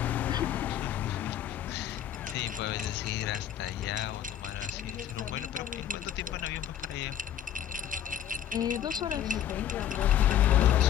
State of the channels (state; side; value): quieter; right; 10.3 dB